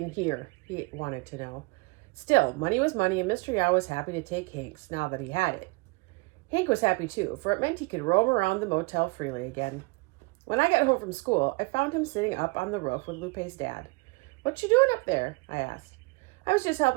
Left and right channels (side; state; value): left; quieter; 27.8 dB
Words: here? He wanted to know. Still, money was money, and Mr. Yao was happy to take Hank's now that he had it. Hank was happy too, for it meant he could roam around the motel freely again. When I got home from school, I found him sitting up on the roof with Lupe's dad. "What you doing up there?" I asked. "I was just